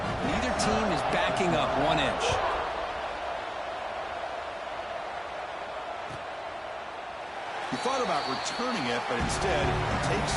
team is backing up 1 inch. He thought about returning it, but instead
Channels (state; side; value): identical; both; correlation 1.00